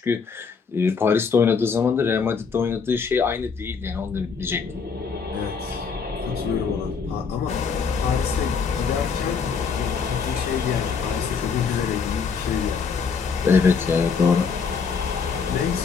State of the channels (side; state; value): right; quieter; 5.7 dB